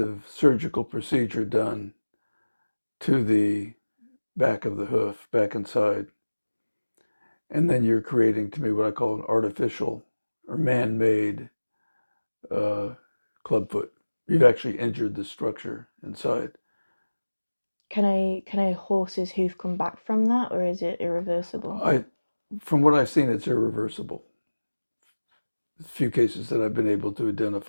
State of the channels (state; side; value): inverted; both; correlation -1.00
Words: surgical procedure done to the back of the hoof, back inside. And then you're creating, to me, what I call an artificial or man-made clubfoot. You've actually injured the structure inside. Can a horse's hoof come back from that, or is it irreversible? From what I've seen, it's irreversible. A few cases that I've been able to